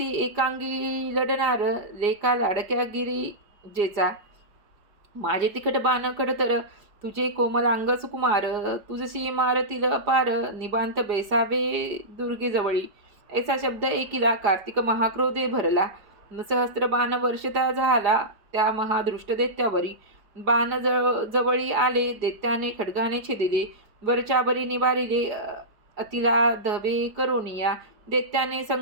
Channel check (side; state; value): left; late; 4.9 ms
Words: एकांगी लढणार लेका लाडक्या गिरिजेचा माझे तिखट बाण खडतर तुझे कोमलांग सुकुमार तुझशी मारतील अपार निबांत बैसावे दुर्गेजवळी ऐसा शब्द ऐकिला कार्तिक महाक्रोधे भरला सहस्त्र बाण वर्षता झाला त्या महादृष्ट दैत्यावरी बाण जवळी आले दैत्याने खड्गाने छेदिले वरच्यावरी निवारिले अतिला धवे करोनिया दैत्याने